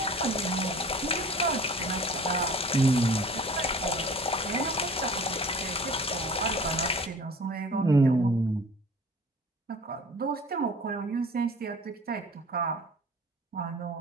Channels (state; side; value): normal; both; correlation 0.46